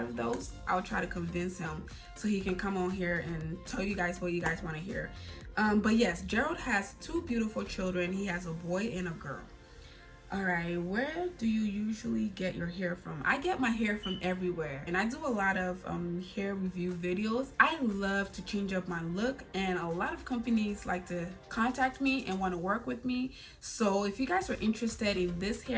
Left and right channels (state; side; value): identical; both; correlation 1.00